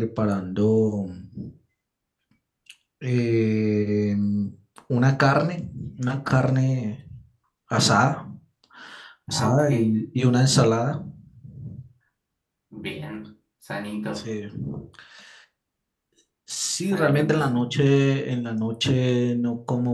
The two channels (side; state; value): both; identical; correlation 1.00